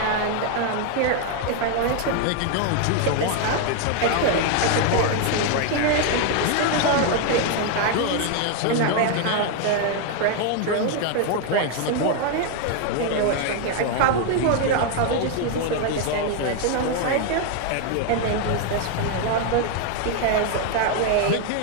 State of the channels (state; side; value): different; both; correlation 0.01